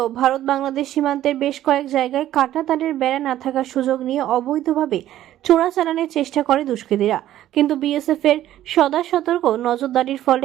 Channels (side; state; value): left; quieter; 13.0 dB